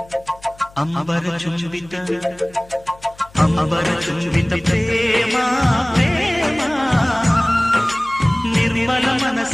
ಅಂಬರ ಚುಂಬಿತ ಅಂಬರ ಚುಂಬಿತ ಪ್ರೇಮ ಪ್ರೇಮ ನಿರ್ಮಲ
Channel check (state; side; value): noise; left; hum, 24 dB below the sound